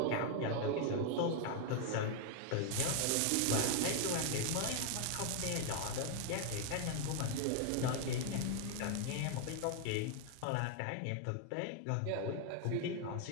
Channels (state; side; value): different; both; correlation 0.00